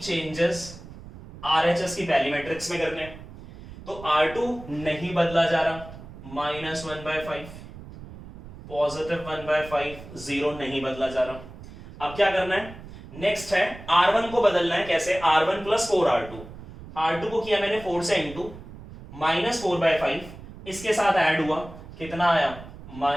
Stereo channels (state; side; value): noise; right; rumble, 15 dB below the sound